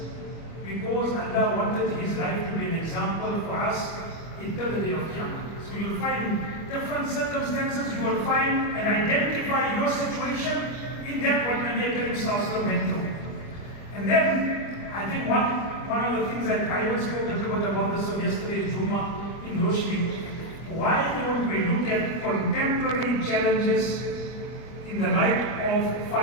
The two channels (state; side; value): late; right; 25 ms